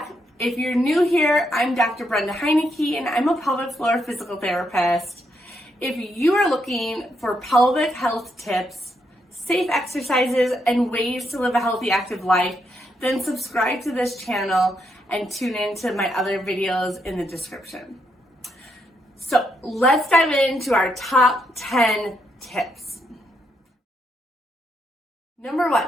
If you're new here, I'm Dr. Brenda Heineke and I'm a pelvic floor physical therapist. If you are looking for pelvic health tips, safe exercises, and ways to live a healthy, active life, then subscribe to this channel and tune into my other videos in the description. So let's dive into our top 10 tips. Number 1.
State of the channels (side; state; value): both; normal; correlation 0.79